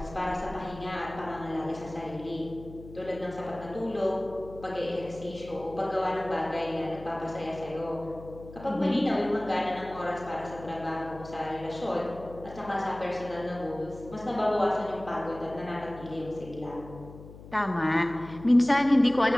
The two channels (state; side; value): noise; left; hum, 16 dB below the sound